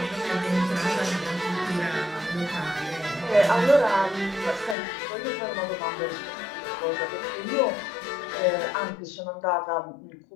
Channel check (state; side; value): drops out; right; at 4.8 s